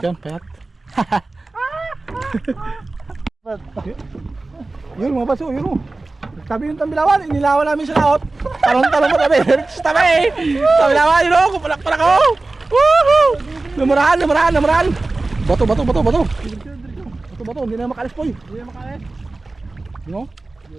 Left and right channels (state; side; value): quieter; left; 3.3 dB